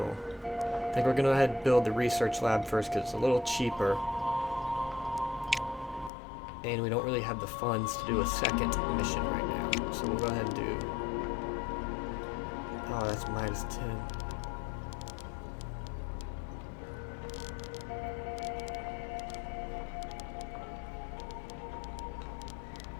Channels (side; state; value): right; drops out; at 6.1 s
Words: I think we're going to go ahead and build the research lab first because it's a little cheaper. And we don't really have the funds to do a second mission right now. So we'll go ahead and do... Oh, that's minus 10.